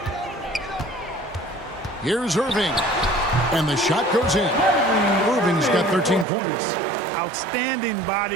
Here's Irving. And the shot goes in. Irving's got 13 points. Outstanding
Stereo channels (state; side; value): drops out; left; at 6.2 s